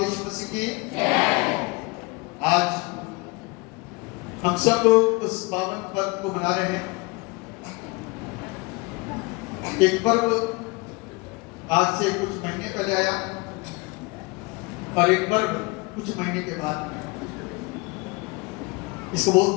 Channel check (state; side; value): quieter; right; 25.9 dB